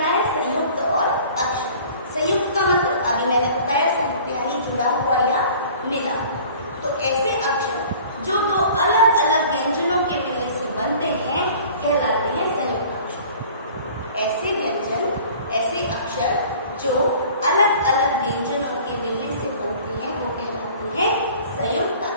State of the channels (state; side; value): inverted; both; correlation -0.47